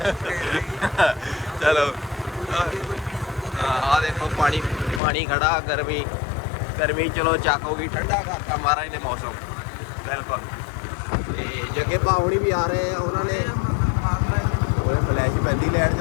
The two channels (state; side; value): drops out; right; at 5.0 s